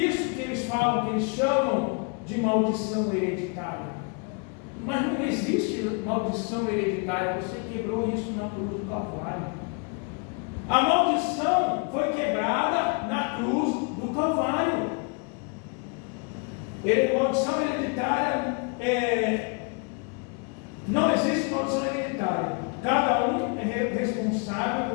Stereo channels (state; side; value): quieter; right; 35.4 dB